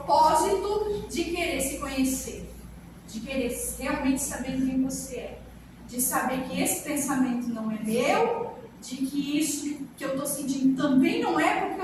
de querer se conhecer, de querer realmente saber quem você é, de saber que esse pensamento não é meu, de que isso que eu estou sentindo também não é porque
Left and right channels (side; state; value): both; identical; correlation 1.00